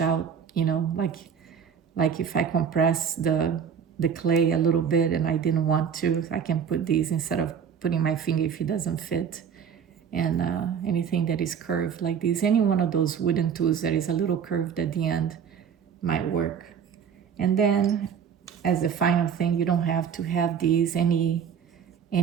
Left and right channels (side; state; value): left; quieter; 7.4 dB